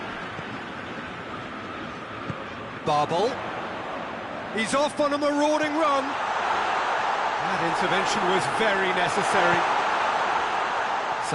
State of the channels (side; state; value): both; identical; correlation 1.00